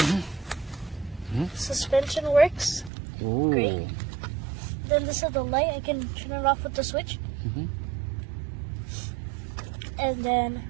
Suspension works. Oh. Great. Then this is the light. I can turn it off with the switch. And then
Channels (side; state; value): left; drops out; at 2.9 s